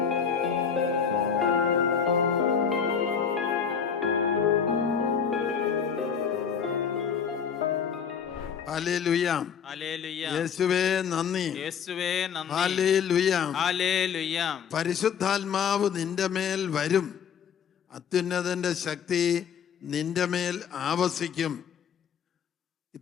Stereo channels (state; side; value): quieter; right; 7.3 dB